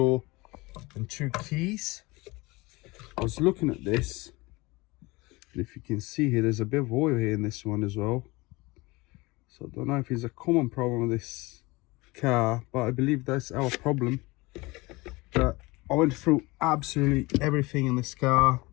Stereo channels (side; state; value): right; quieter; 23.2 dB